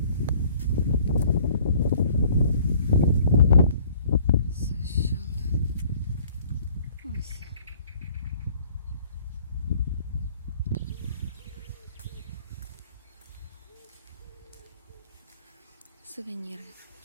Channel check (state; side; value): inverted; both; correlation -0.56